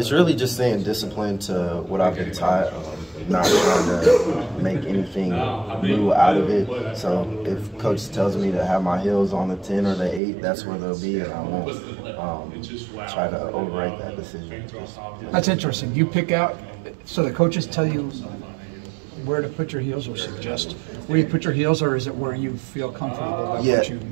really just staying disciplined to what I've been taught. Not trying to make anything new out of it. So if coach tells me to have my heels on the 10 or the 8, that's where they'll be, and I won't try to override that decision. That's interesting. You pick out, so the coaches tell you where to put your heels or suggest where you put your heels, or is it where you feel comfortable about what you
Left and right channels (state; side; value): drops out; left; at 10.2 s